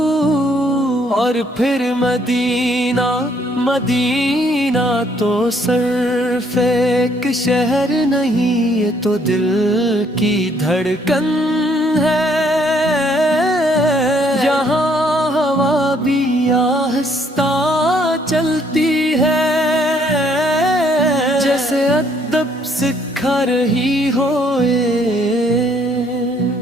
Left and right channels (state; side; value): normal; both; correlation 0.66